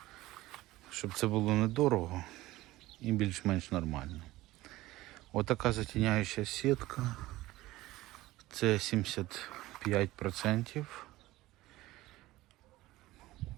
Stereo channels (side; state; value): left; quieter; 17.6 dB